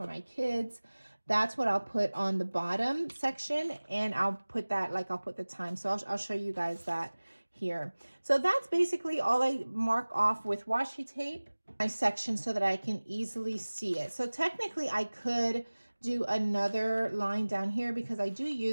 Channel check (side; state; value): both; inverted; correlation -1.00